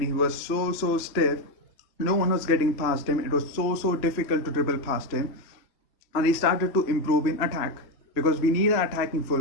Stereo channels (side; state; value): right; late; 3.0 ms